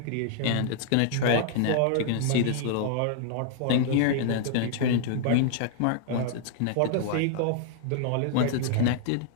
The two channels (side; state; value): both; different; correlation -0.01